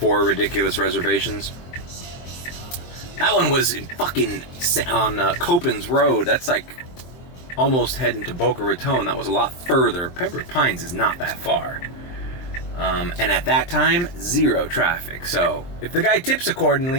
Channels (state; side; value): late; right; 23 ms